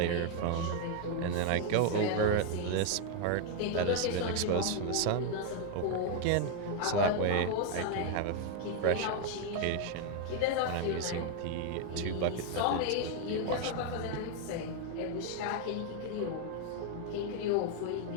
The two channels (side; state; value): both; different; correlation 0.01